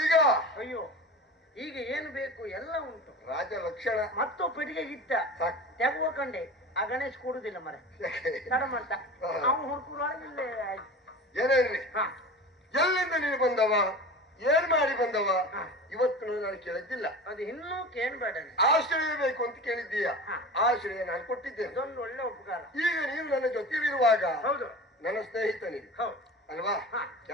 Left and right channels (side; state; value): both; normal; correlation 0.34